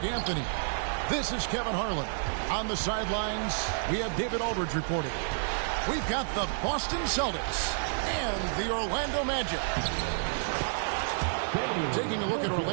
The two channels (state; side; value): silent; left; 58 dB below the other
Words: Anthony. This is Kevin Harlan. On the sidelines, we have David Aldridge reporting. We've got the Boston Celtics and the Orlando Magic. Taking a look at